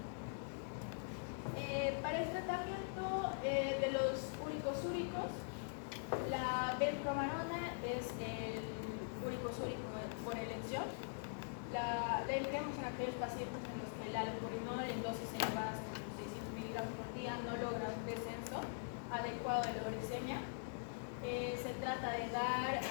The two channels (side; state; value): right; silent; digital silence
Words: Para el tratamiento de los úricos úricos, la benpromarona es el úrico úrico por elección. La empleamos en aquellos pacientes en los que el allopurinol en dosis elevadas como 600 miligramos por día no logra un descenso adecuado de la uricemia. Se trata de dar